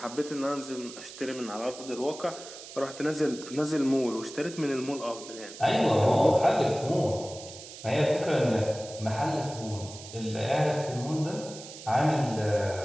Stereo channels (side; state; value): right; noise; hiss, 14 dB below the sound